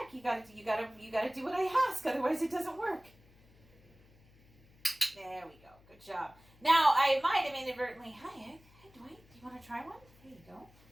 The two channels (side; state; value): left; noise; hum, 27 dB below the sound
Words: You gotta do what I ask, otherwise it doesn't work. There we go. Good job. Now I might have inadvertently. Hi, Egg. Hey, Dwight. Do you want to try one? There you go.